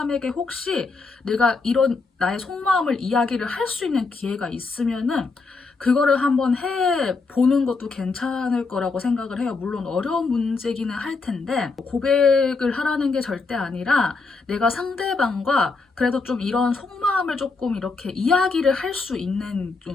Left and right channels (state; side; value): quieter; right; 4.1 dB